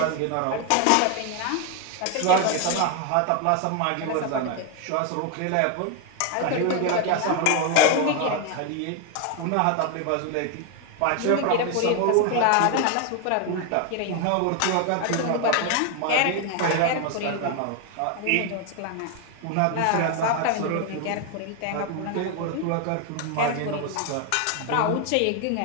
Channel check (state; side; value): different; both; correlation 0.01